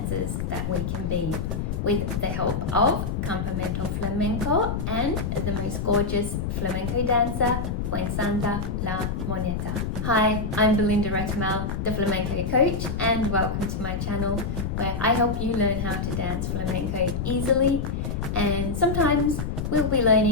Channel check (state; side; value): noise; left; rumble, 2 dB below the sound